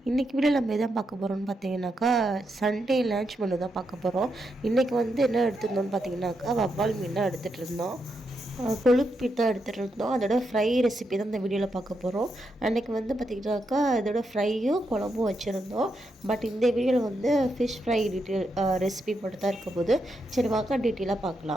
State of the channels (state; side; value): normal; both; correlation 0.82